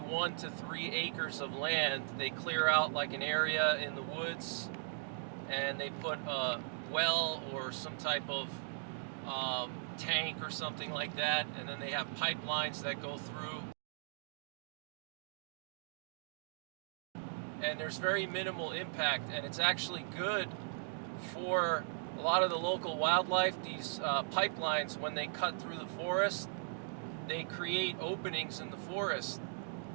1 to 3 acres of land. They clear out like an area in the woods and they put a well or some type of tank or something like that, and then they have pipelines that go through. And there's very minimal impact, and it's actually good for a lot of the local wildlife. These pipelines, when they cut through the forest, they create openings in the forest,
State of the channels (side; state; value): left; silent; digital silence